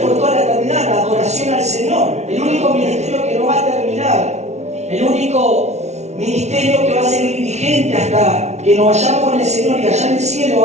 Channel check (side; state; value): left; late; 0.32 ms